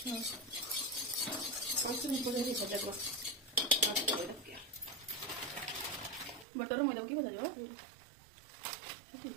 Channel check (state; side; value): drops out; left; at 6.5 s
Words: बटर मैदा की भजा जो